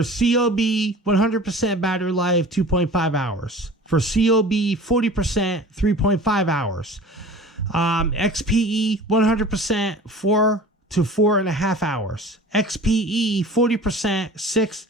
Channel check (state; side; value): normal; both; correlation 0.41